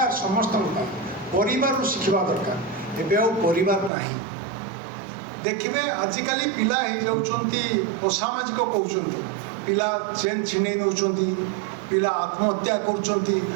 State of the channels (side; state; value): left; drops out; at 3.9 s